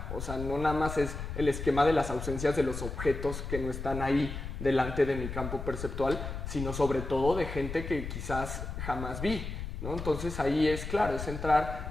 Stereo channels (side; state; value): left; noise; rumble, 7 dB below the sound